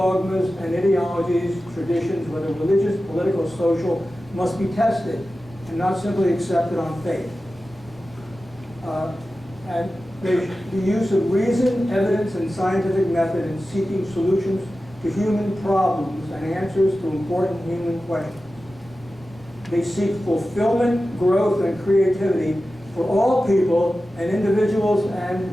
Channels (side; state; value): both; normal; correlation 0.94